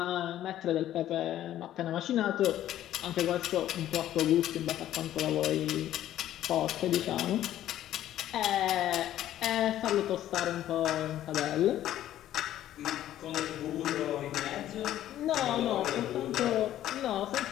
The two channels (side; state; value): right; quieter; 12.6 dB